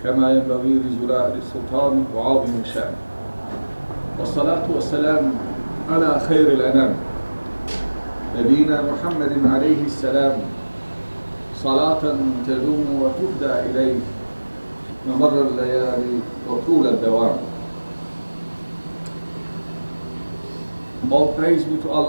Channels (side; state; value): both; inverted; correlation -1.00